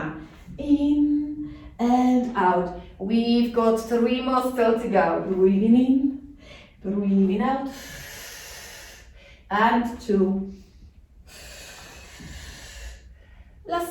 In and out. We've got 3 more still to go. Breathing in, breathing out, and 2.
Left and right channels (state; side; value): identical; both; correlation 1.00